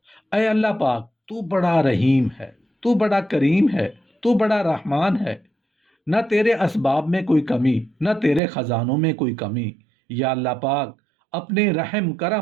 اے اللہ پاک، تو بڑا رحیم ہے، تو بڑا کریم ہے، تو بڑا رحمان ہے۔ نہ تیرے اسباب میں کوئی کمی، نہ تیرے خزانوں میں کوئی کمی۔ یا اللہ پاک، اپنے رحم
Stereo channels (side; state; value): left; drops out; at 8.4 s